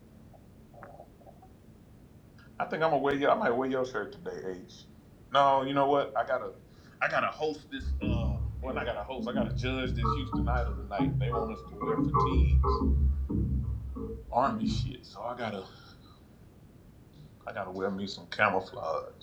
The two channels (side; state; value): both; identical; correlation 1.00